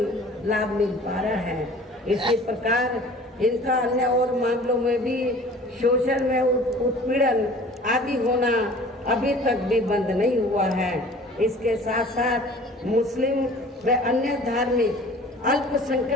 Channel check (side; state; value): both; normal; correlation 0.47